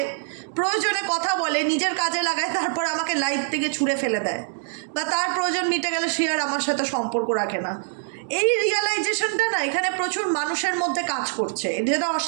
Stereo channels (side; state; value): left; silent; digital silence